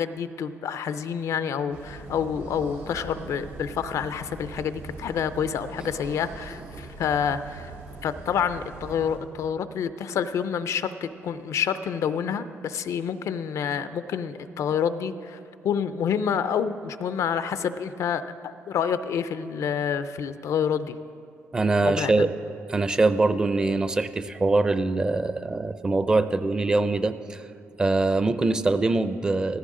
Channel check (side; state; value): both; normal; correlation 0.70